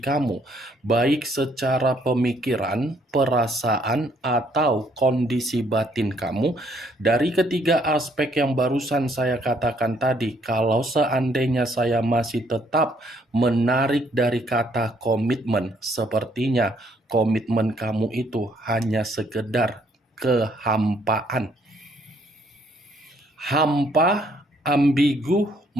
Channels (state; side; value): normal; both; correlation 0.67